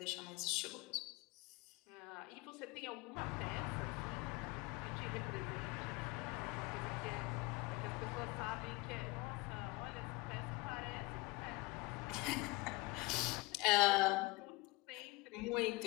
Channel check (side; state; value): right; quieter; 22.5 dB